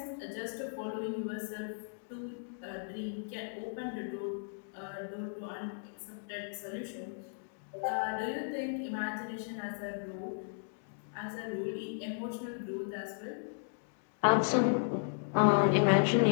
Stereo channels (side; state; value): right; silent; digital silence